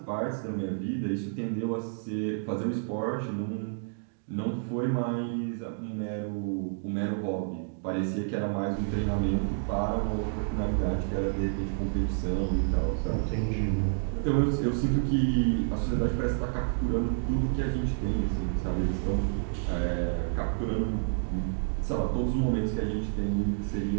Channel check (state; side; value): silent; left; digital silence